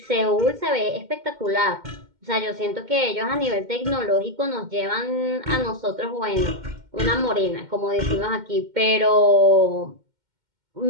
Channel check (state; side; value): late; left; 2.1 ms